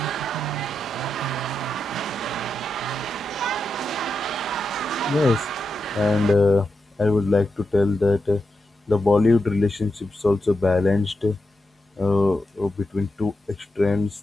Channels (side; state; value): both; normal; correlation 0.87